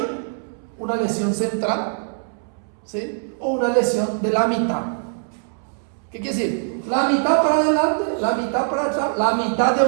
una lesión central, ¿sí? O una lesión de la mitad. ¿Qué quiere decir? La mitad para adelante, la mitad para atrás, la mitad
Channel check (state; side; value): silent; left; 64 dB below the other